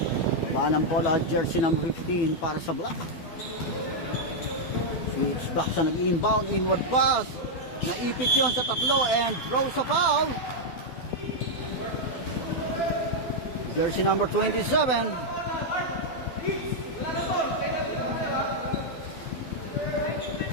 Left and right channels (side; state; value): right; late; 12 ms